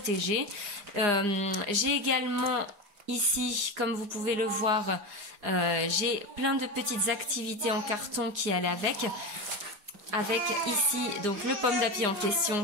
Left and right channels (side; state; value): left; late; 4.9 ms